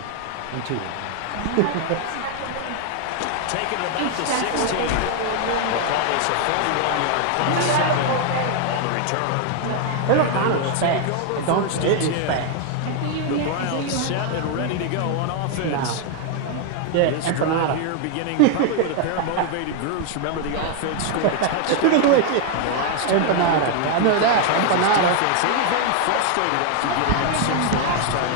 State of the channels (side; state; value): both; different; correlation 0.01